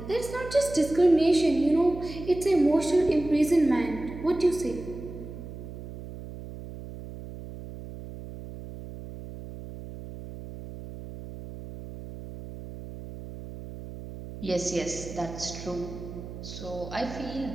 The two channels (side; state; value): right; noise; hum, 12 dB below the sound